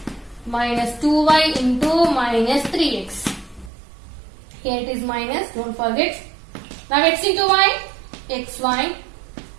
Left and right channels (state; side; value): drops out; left; at 3.7 s